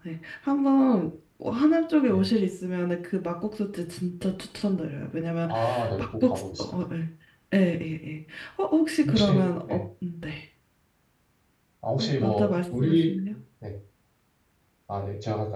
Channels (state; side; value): identical; both; correlation 1.00